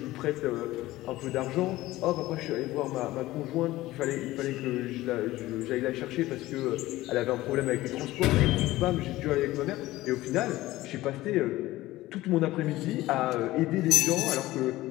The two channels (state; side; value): quieter; right; 17.2 dB